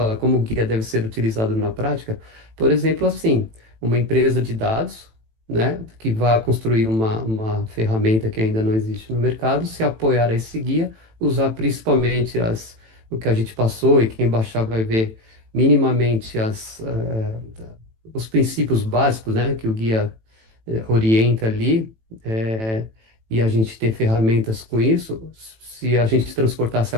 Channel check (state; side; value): late; left; 18 ms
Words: como o guia deve ser utilizado na prática. Por exemplo, assim, uma empresa de dados, né, que vai construir uma ferramenta que ainda não existe no mercado, se apoiar a esse guia, usar principalmente o que a gente passou e quem baixar vai ver minimamente os princípios básicos, né, que o guia orienta ali. eh, e a gente ter ferramentas com isso, se a gente transportasse